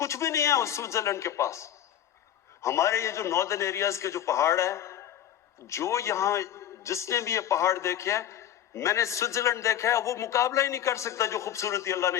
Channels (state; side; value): quieter; right; 10.9 dB